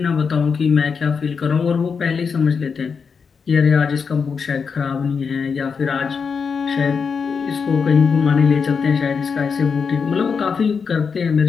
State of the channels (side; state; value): right; quieter; 5.7 dB